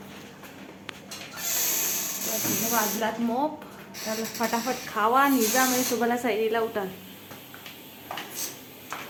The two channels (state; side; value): identical; both; correlation 1.00